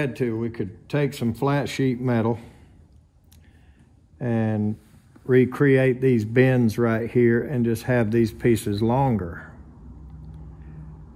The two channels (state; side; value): identical; both; correlation 1.00